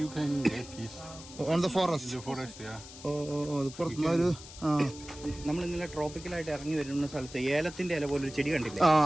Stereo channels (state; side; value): noise; left; hiss, 16 dB below the sound